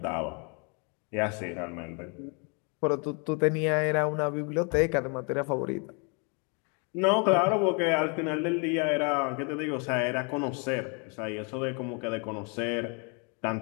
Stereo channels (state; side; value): quieter; right; 35.3 dB